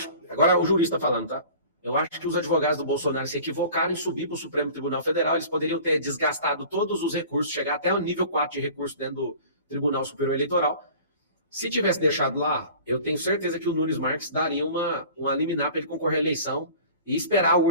Agora o jurista falando, tá? Eu acho que os advogados do Bolsonaro se equivocaram em subir para o Supremo Tribunal Federal. Eles poderiam ter desgastado todos os recursos, chegar até o nível 4 de recurso dentro do Tribunal Superior Eleitoral. Se tivesse deixado lá, eu tenho certeza que o Nunes Marques daria uma liminar para ele concorrer à eleição e esperar a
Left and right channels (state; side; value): inverted; both; correlation -0.43